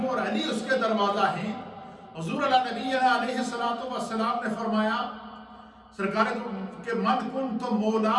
اور علی اس کے دروازہ ہیں۔ حضور نبی علیہ السلام نے فرمایا سرکار کہ من کنت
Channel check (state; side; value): identical; both; correlation 1.00